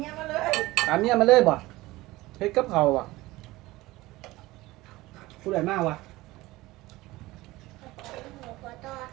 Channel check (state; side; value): quieter; left; 19.1 dB